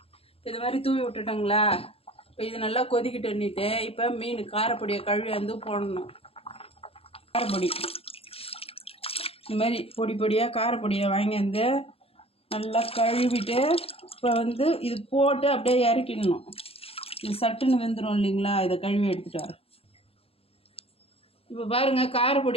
இது மாதிரி தூவி விட்டுட்டோங்களா. இப்போ இது நல்லா கொதிக்கிட்டுன்னுட்டு இப்போ மீன் காரப்பொடியை கழுவி வந்து போடணும். காரப்பொடி இந்த மாதிரி பொடி பொடியாக காரப்பொடியை வாங்கி வந்து நல்லா கழுவிட்டு இப்போ வந்து இது போட்டு அப்படியே இறக்கிடணும். இது சட்டுன்னு வெந்துடும் இல்லைங்களா. இதை கழுவி எடுத்துகிட்டு வரேன். இப்போ பாருங்கள்,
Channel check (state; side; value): late; right; 0.28 ms